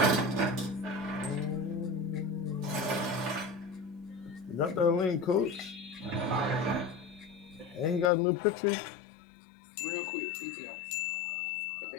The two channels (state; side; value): drops out; right; at 8.1 s